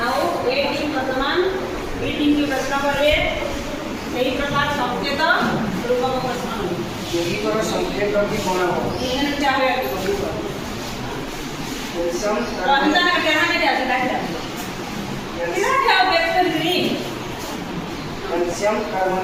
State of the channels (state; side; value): identical; both; correlation 1.00